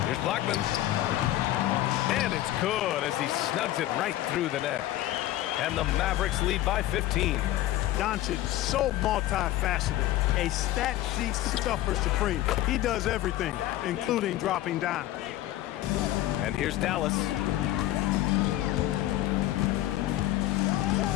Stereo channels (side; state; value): right; quieter; 14.7 dB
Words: Here's Blackman. And it's good as he snugs it right through the net. And the Mavericks lead by 15. Doncic, so multifaceted, a stat sheet stuffer supreme. He does everything, including dropping down. And here's Dallas.